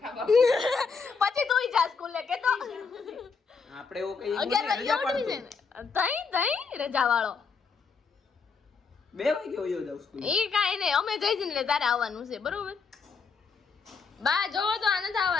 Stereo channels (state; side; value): quieter; right; 5.2 dB